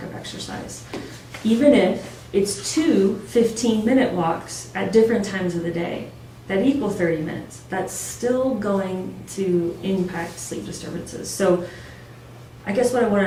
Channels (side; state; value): both; identical; correlation 1.00